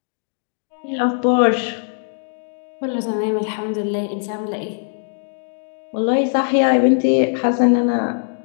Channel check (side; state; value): right; silent; digital silence